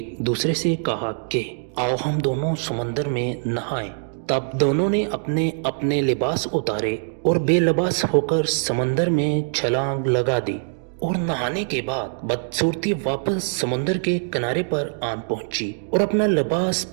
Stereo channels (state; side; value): silent; left; digital silence